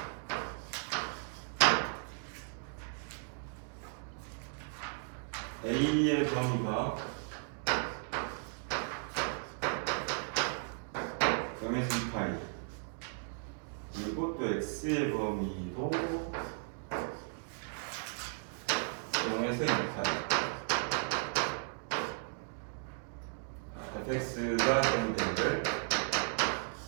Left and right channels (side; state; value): left; silent; 54 dB below the other